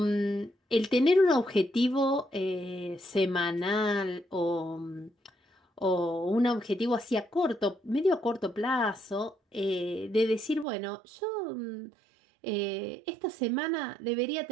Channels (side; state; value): left; drops out; at 10.7 s